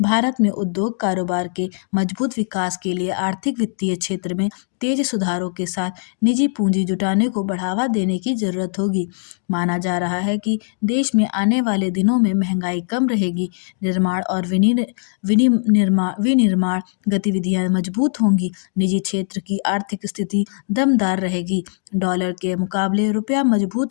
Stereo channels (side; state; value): right; silent; digital silence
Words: भारत में उद्योग कारोबार के मजबूत विकास के लिए आर्थिक वित्तीय क्षेत्र में तेज सुधारों के साथ निजी पूंजी जुटाने को बढ़ावा देने की जरूरत होगी। माना जा रहा है कि देश में आने वाले दिनों में महंगाई कम रहेगी, निर्माण और विनिर्माण गतिविधियां मजबूत होंगी, निजी क्षेत्र की आर्थिक स्थिति दमदार रहेगी, डॉलर के मुकाबले रुपया